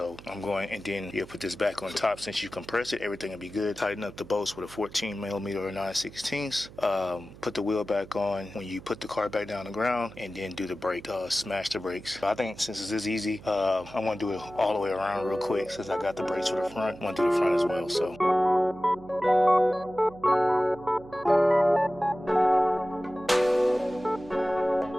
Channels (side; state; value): right; noise; hum, 19 dB below the sound